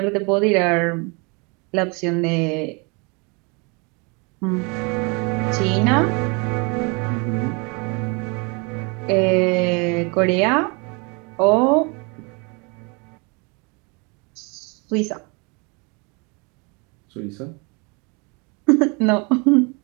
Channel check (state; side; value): quieter; left; 31.1 dB